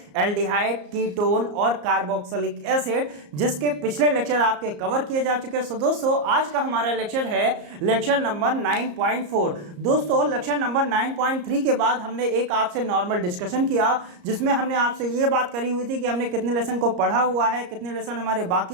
एल्डिहाइड, कीटोन और कार्बोक्सिलिक एसिड, जिसके पिछले लेक्चर आपके कवर किए जा चुके हैं। सो दोस्तों, आज का हमारा लेक्चर है लेक्चर नंबर 9.4। दोस्तों, लेक्चर नंबर 9.3 के बाद हमने एक आपसे नॉर्मल डिस्कशन किया, जिसमें हमने आपसे ये बात करी हुई थी कि हमने कितने लेसन को पढ़ा हुआ है, कितने लेसन हमारे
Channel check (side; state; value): left; late; 34 ms